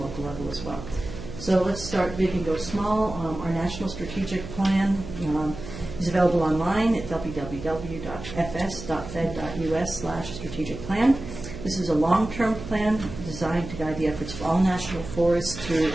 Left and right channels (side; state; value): right; noise; hum, 11 dB below the sound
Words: level as well. So let's start big and go small. Our national strategic plan is available online at www.fs.fed.us/strategic plan. This is a long-term plan designed to guide the efforts of all national forests through